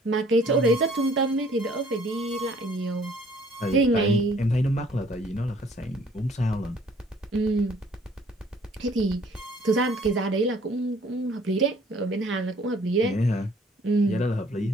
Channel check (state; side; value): normal; both; correlation 0.58